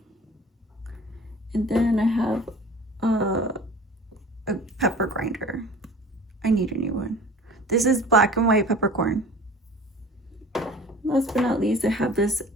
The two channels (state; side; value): normal; both; correlation 0.43